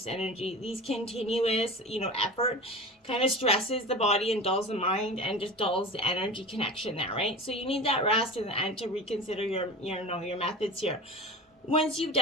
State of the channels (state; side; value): normal; both; correlation 0.33